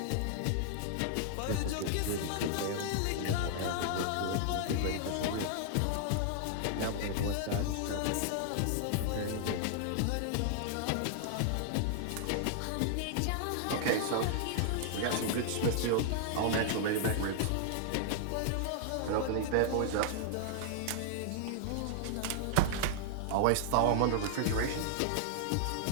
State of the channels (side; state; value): both; different; correlation -0.01